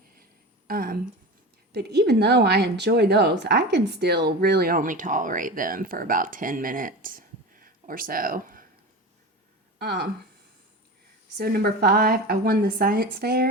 But even though I enjoy those, I can still really only tolerate them for about 10 minutes or so. So number 5, I won the science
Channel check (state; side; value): normal; both; correlation 0.29